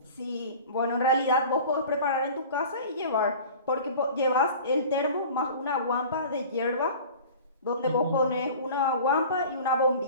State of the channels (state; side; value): inverted; both; correlation -0.40